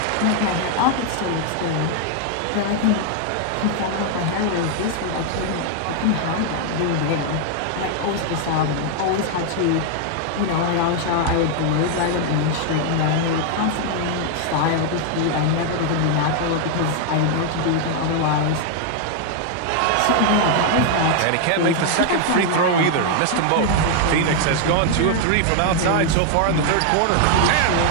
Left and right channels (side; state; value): both; different; correlation 0.00